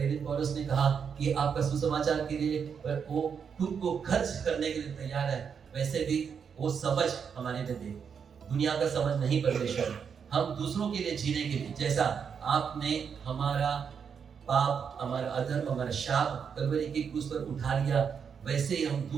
पौलुस ने कहा कि आपका सुसमाचार के लिए वो खुद को खर्च करने के लिए तैयार है, वैसे भी वो समझ हमारे में दे। दुनिया का समझ नहीं परमेश्वर, हम दूसरों के लिए जीने के लिए, जैसा आपने हमारा पाप, हमारा अधर्म, हमारा शाप कलवरी की क्रूस पर उठा लिया, वैसे ही हम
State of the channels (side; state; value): left; quieter; 6.8 dB